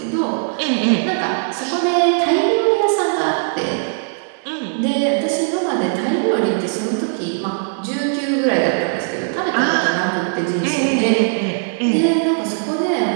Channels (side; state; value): left; silent; 65 dB below the other